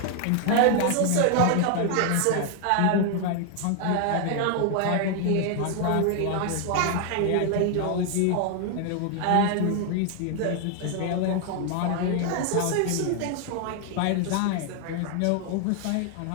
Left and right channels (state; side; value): different; both; correlation 0.00